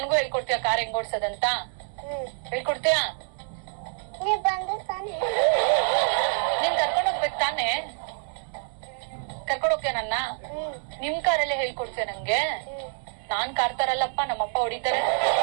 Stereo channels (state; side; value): silent; left; 59 dB below the other